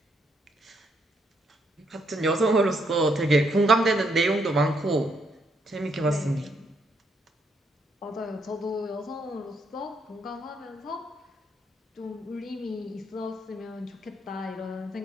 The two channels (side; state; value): both; normal; correlation 0.74